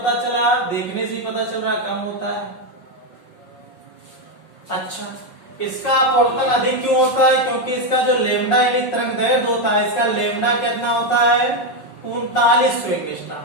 चला? देखने से ही पता चल रहा है कम होता है। अच्छा, इसका अपवर्तन अधिक क्यों होता है? क्योंकि इसका जो लेमडा यानी तरंगदैर्घ्य होता है, इसका लेमडा कितना होता है? 3900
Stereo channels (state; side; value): late; right; 5.5 ms